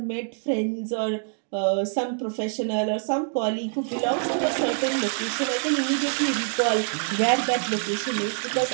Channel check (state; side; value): silent; left; digital silence